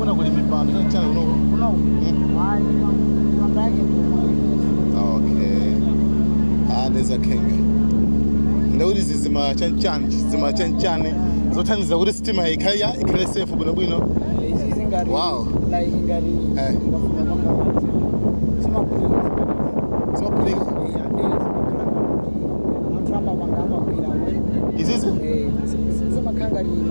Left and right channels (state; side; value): inverted; both; correlation -1.00